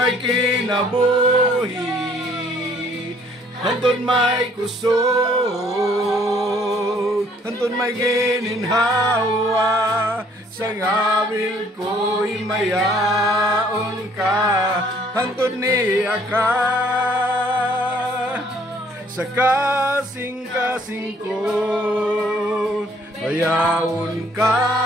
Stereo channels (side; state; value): both; normal; correlation 0.61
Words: kinabuhi hantod may kusog hantod may gininhawa sa ngabil ko'y mayaon ka hantod niya ka sa kasing-kasing ko bayaon